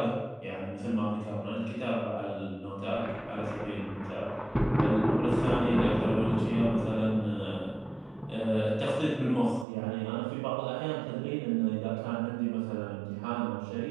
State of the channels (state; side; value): drops out; left; at 9.7 s